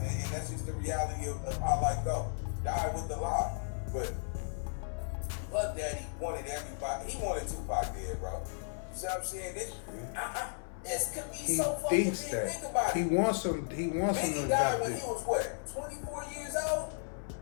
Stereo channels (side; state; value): right; silent; 55 dB below the other